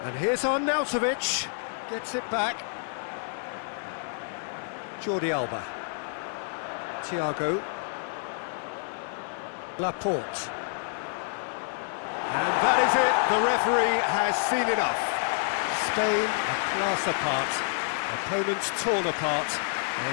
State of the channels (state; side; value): silent; right; digital silence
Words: And here's Arnautovic, gets it back. Jordi Alba. Thiago. Laporte. And that is it, the referee has seen enough. Spain a class apart, opponents torn apart.